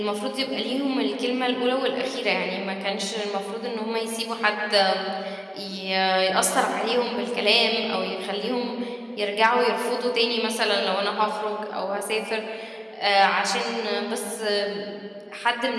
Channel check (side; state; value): both; identical; correlation 1.00